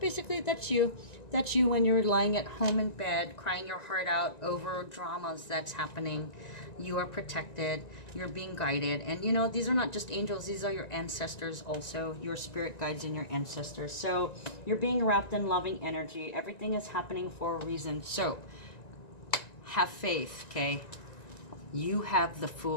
that's you. That's you when you're lying at home in bed, crying your heart out over dramas that's happening. You are protected. You're being guided. And you know, these are not just angels. These are your ancestors also. Your spirit guides and your ancestors. So you're being wrapped in loving energy. Everything is happening for a reason. So have faith, okay? You have the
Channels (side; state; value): right; late; 1.9 ms